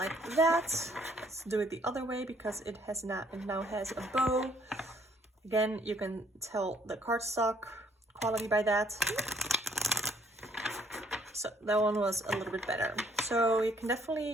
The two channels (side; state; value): both; normal; correlation 0.64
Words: that. Let's do it the other way, because it now has a bow. Again, you can tell the cardstock quality by that. So that one was a little bit better. So you can